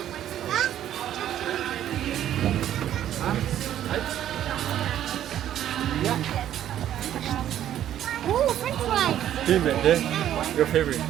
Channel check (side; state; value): left; quieter; 11.3 dB